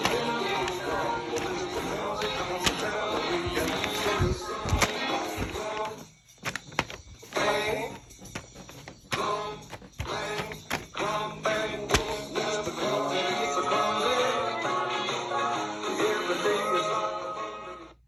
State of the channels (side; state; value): both; identical; correlation 1.00